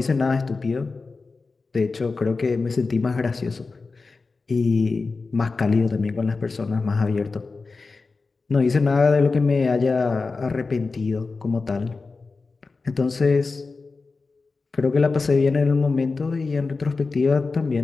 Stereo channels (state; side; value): quieter; right; 4.1 dB